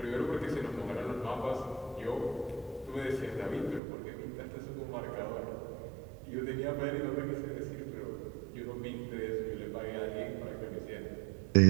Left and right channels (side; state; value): left; drops out; at 3.8 s